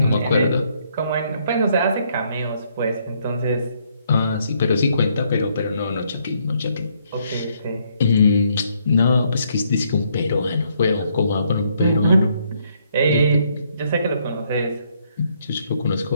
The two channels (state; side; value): inverted; both; correlation -0.71